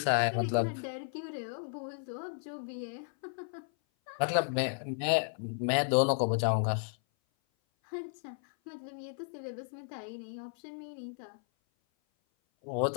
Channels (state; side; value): silent; right; 55 dB below the other